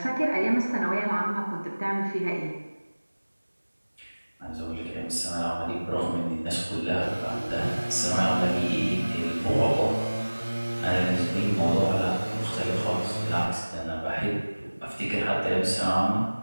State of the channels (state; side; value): inverted; both; correlation -1.00